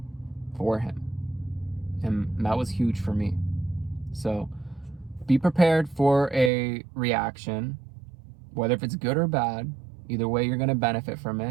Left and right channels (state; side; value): drops out; left; at 6.5 s